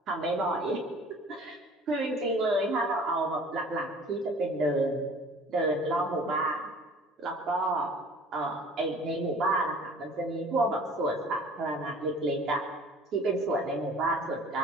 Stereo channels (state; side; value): normal; both; correlation 0.48